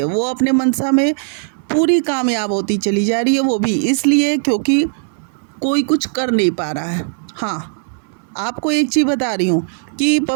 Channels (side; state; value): left; silent; 68 dB below the other